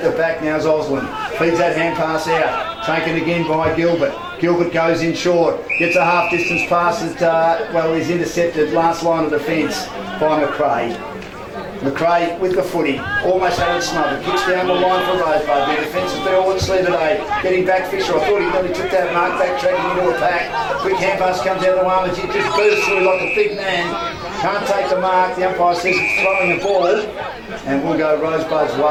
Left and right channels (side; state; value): both; identical; correlation 1.00